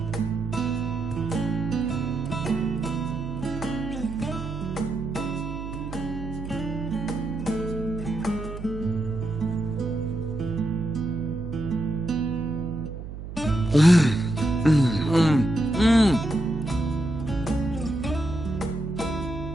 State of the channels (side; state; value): right; noise; hum, 10 dB below the sound